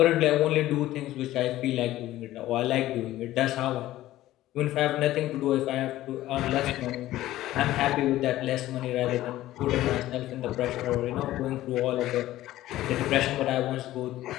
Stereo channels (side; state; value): right; quieter; 15.1 dB